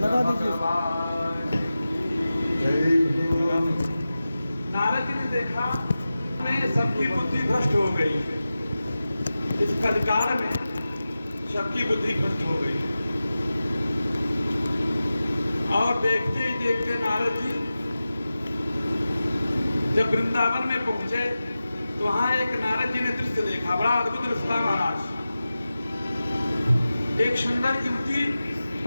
दीजिए। नारद जी ने देखा में सबकी बुद्धि भ्रष्ट हो गई, इस कलिकाल में सबकी बुद्धि भ्रष्ट हो गई। और देखते ही देखते नारद जी जब वृंदावन में पहुंचे तो वहां एक नारद जी ने दृश्य देखा, बड़ा अद्भुत दृश्य था महाराज। एक सुंदर युवती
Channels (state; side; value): inverted; both; correlation -0.94